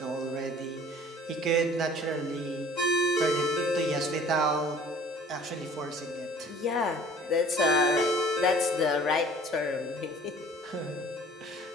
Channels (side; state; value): both; normal; correlation 0.50